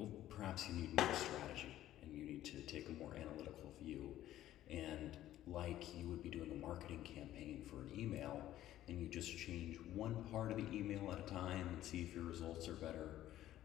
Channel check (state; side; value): quieter; right; 13.4 dB